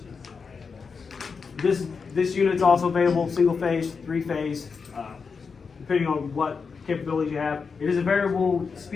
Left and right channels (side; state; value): right; quieter; 5.3 dB